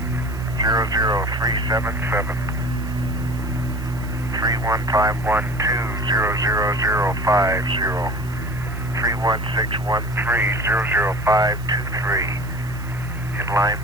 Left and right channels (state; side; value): noise; right; hiss, 22 dB below the sound